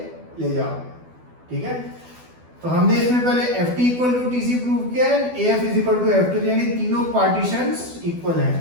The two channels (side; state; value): left; late; 12 ms